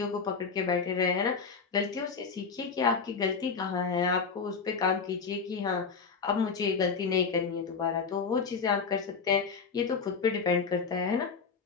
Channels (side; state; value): right; quieter; 5.4 dB